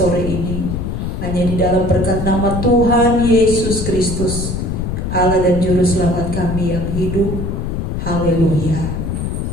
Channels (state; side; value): noise; left; rumble, 3 dB below the sound